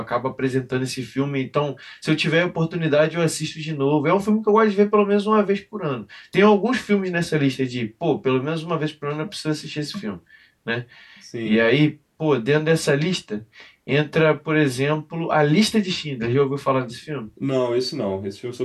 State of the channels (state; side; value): identical; both; correlation 1.00